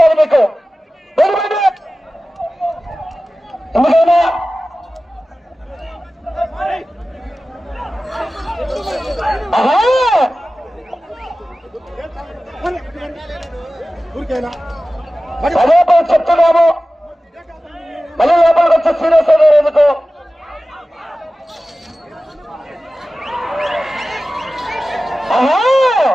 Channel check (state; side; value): normal; both; correlation 0.95